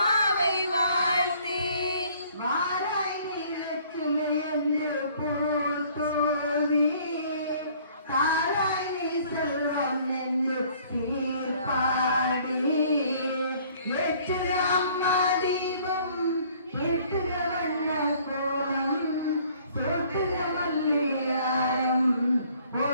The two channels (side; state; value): both; inverted; correlation -0.58